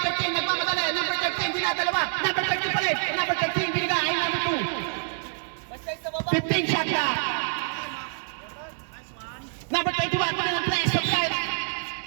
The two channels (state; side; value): silent; left; 59 dB below the other